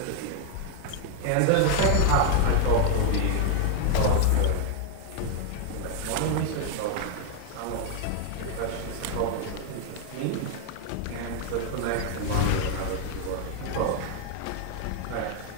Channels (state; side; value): different; both; correlation 0.00